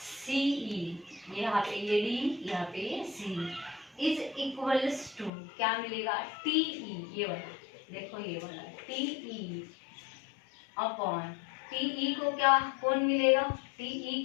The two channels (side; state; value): right; drops out; at 5.3 s